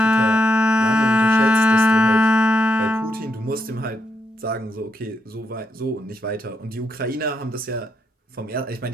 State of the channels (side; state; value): both; normal; correlation 0.80